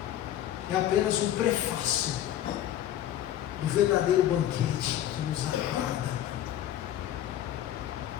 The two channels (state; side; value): quieter; right; 12.0 dB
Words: é apenas um prefácio do verdadeiro banquete que nos aguarda.